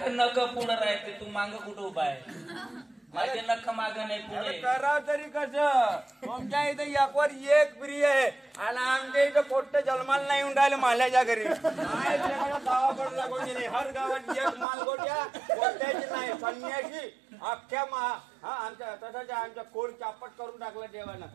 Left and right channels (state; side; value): drops out; left; at 14.7 s